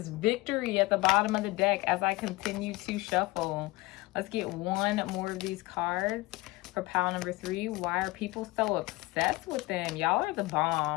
victory at the bottom of the deck as I continue to shuffle. Let's get one more of these cards for pile number 3. Why are people so obsessed with them? Y'all are the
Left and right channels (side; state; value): right; quieter; 21.7 dB